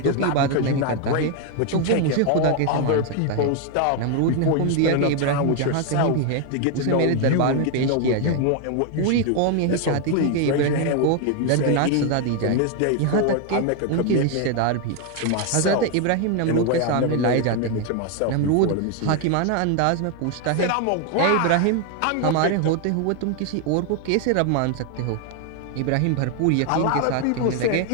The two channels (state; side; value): different; both; correlation 0.01